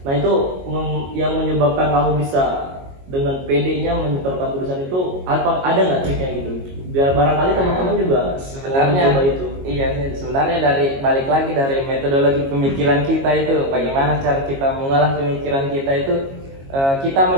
Nah itu yang menyebabkan kamu bisa dengan PD-nya menyetorkan tulisan itu, ada nggak triknya gitu? Biar barangkali teman-teman juga sebenarnya coba itu. Iya, sebenarnya dari balik lagi dari metodologi pemikiran kita itu, bagaimana cara kita mengolah pemikiran kita itu. Kita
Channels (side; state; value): left; late; 22 ms